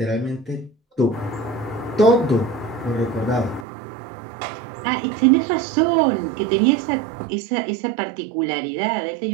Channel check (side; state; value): left; drops out; at 3.7 s